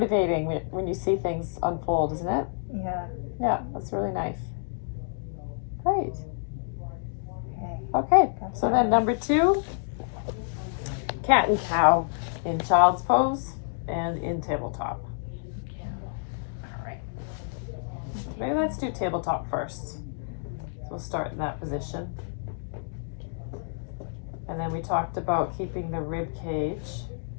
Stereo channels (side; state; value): right; silent; digital silence